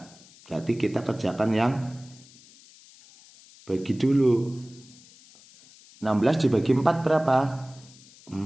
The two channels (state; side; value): noise; left; hiss, 24 dB below the sound